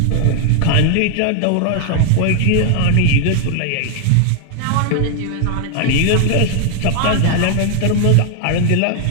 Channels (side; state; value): both; different; correlation 0.00